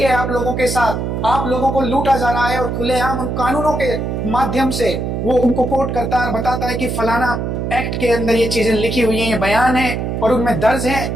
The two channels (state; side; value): noise; right; hum, 2 dB below the sound